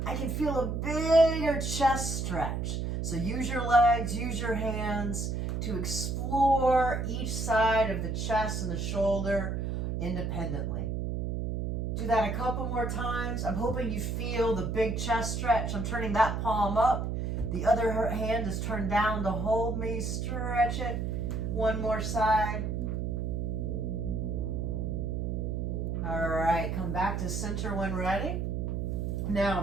I can feel a bigger chest stretch. So use your legs, use your hands to explore each side of the chest and the shoulder independently. Do that a couple more times. I'm hoping you feel the big chest stretch. I'm turning that palm up. The other hand is turned down to hold me. Stretch it. One more side. All right, come back to center when ready. Now,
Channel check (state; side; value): noise; right; hum, 1 dB below the sound